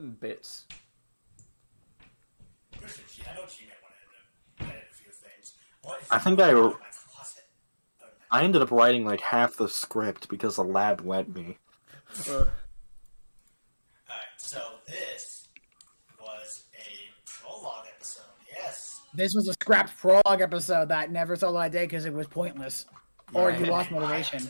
bits. I know G-Man wanted to edit a few things. I think I ended up writing like half the script because the lab let me. Alright, so this was a prologue episode, yes. This was a scrapped prologue episode that never saw the light of day because it was pointless. Or you lost motivation.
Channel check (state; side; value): inverted; both; correlation -1.00